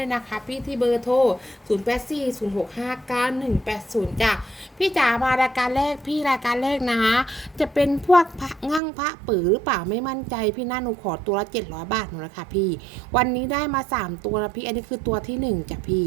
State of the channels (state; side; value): drops out; left; at 8.8 s